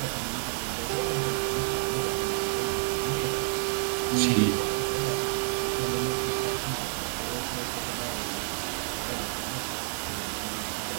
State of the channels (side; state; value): left; silent; digital silence